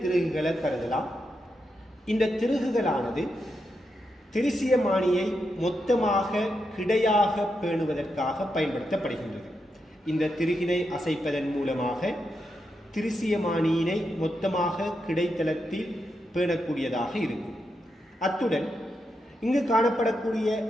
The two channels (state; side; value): normal; both; correlation 0.85